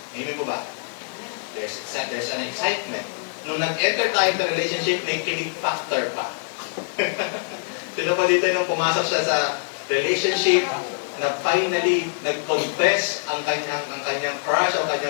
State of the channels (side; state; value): right; silent; 60 dB below the other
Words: Amen po ba? There's an excitement. Nung nag-enter tayo sa relationship, may kilig factor pa. Sino pa dito nung pumasok siya sa relationship, na finally nag-confess ang kanyang crush o